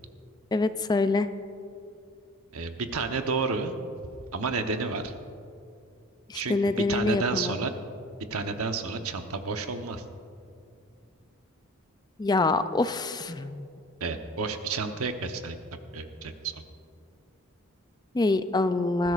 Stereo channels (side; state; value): both; normal; correlation 0.47